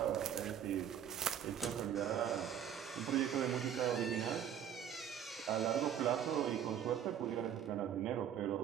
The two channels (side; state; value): left; quieter; 9.3 dB